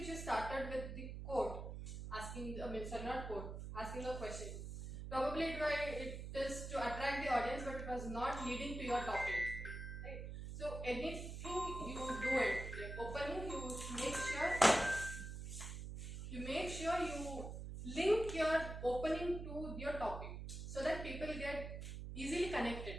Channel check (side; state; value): right; noise; hum, 7 dB below the sound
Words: you started with the quote, asking a question. Probably it is to attract the audience, but it was not leading to your topic. Right? So anything you do it, like opening, you make sure you link your opening to your topic, so that people get easily connected.